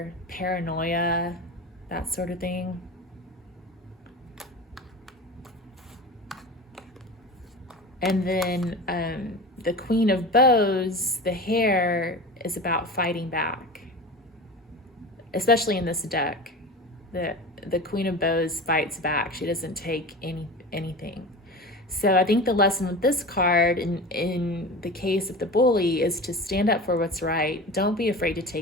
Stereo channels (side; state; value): both; normal; correlation 0.32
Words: paranoia, that sort of thing. And then the Queen of Bows, the hair, is about fighting back, especially in this deck. The Queen of Bows fights back. She doesn't take anything. So I think the lesson with this card, in the case of the Bully, is to stand up for what's right. Don't be afraid to